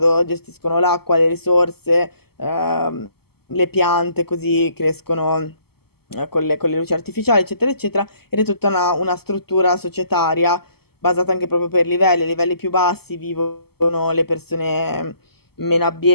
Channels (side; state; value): right; late; 0.96 ms